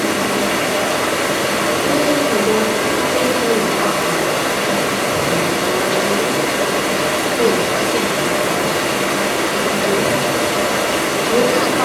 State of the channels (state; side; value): identical; both; correlation 1.00